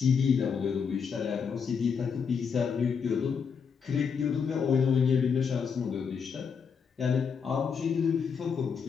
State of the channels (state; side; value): quieter; right; 6.3 dB